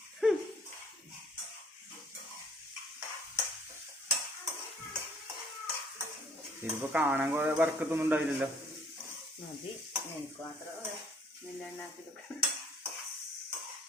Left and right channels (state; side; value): normal; both; correlation 0.58